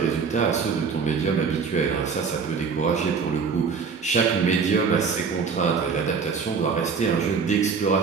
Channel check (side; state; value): left; quieter; 5.5 dB